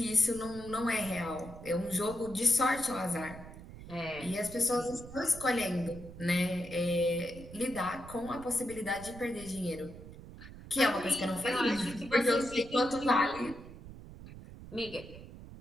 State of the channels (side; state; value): right; noise; rumble, 15 dB below the sound